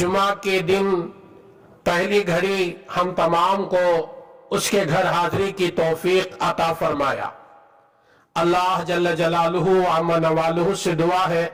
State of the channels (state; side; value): identical; both; correlation 1.00